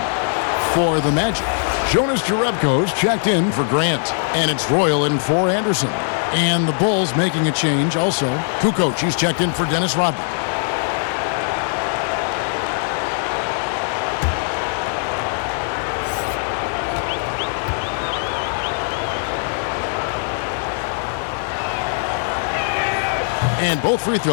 For the Magic, Jonas Jerebko's checked in for Grant. And it's Royal in for Anderson. And the Bulls making a change also. Kukoc, he's checked in for Dennis Rodman. And both free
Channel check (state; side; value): silent; right; digital silence